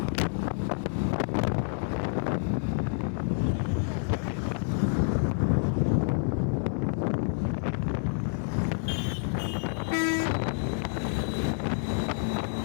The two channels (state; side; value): silent; right; 59 dB below the other